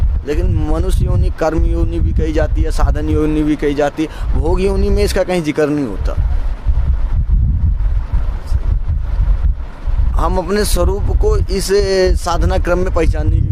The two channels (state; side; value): identical; both; correlation 1.00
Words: लेकिन मनुष्य योनि कर्म योनि भी कही जाती है, साधन योनि भी कही जाती है। भोग योनि में इसका कहीं जिक्र नहीं होता। हम अपने स्वरूप को इस साधना क्रम में पहचानने